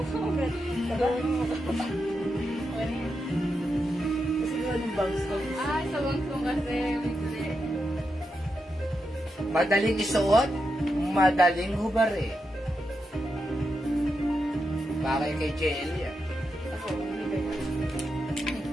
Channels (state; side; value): normal; both; correlation 0.86